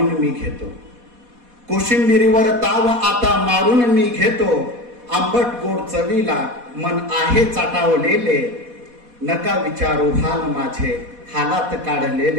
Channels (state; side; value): late; left; 4.1 ms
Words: मी घेतो, कोशिंबिरीवर ताव आता मारून मी घेतो. आंबट गोड चवीला मन आहे चाटावलेले, नका विचारू हाल माझे हालात